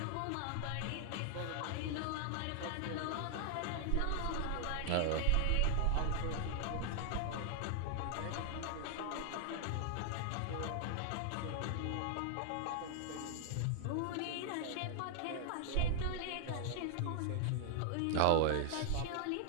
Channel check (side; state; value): both; different; correlation 0.00